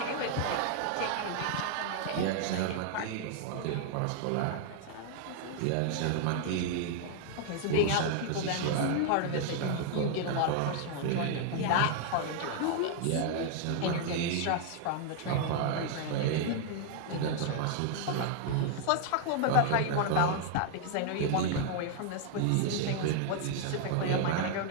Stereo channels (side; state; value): both; different; correlation 0.00